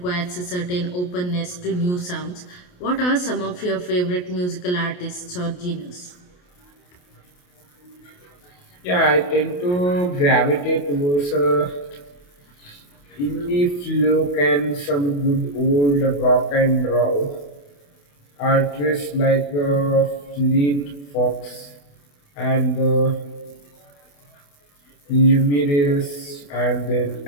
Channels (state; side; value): late; right; 28 ms